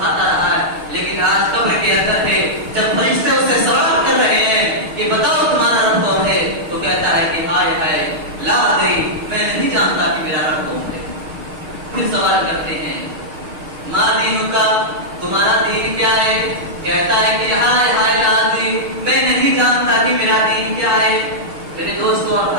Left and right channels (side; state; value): left; late; 6.5 ms